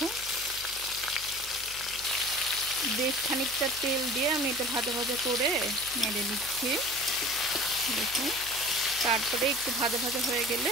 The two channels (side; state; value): right; noise; hum, 19 dB below the sound